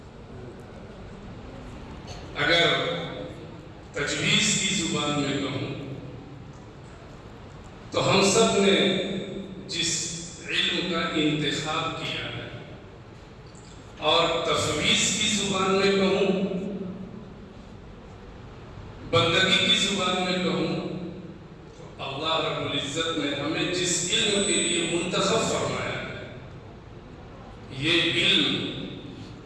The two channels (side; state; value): both; identical; correlation 1.00